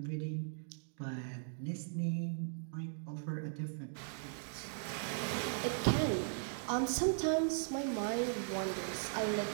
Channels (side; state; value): left; silent; digital silence